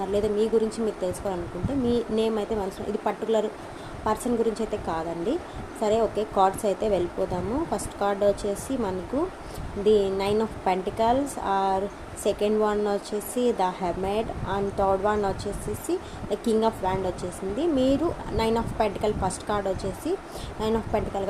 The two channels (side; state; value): both; identical; correlation 1.00